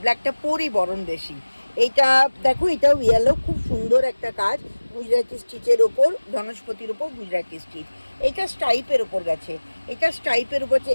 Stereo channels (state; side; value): inverted; both; correlation -1.00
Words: ব্ল্যাকটা পরি বরং বেশি। এইটা দেখো, এটাও ইয়েলো, খুব সুন্দর একটা কাজ গুজরাটি স্টিচের ওপর, বনস্পতির ওপর গুজরাটি স্টিচ। এটা স্টাইপের ওপর গেছে,